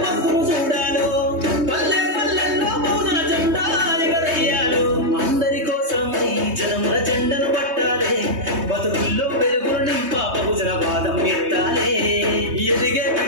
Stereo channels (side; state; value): left; late; 3.2 ms